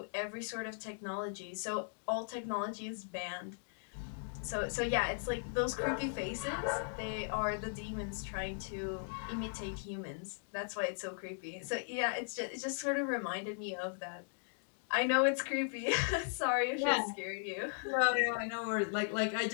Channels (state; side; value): silent; right; digital silence